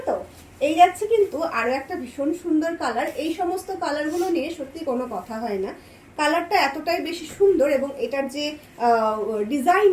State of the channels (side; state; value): both; identical; correlation 1.00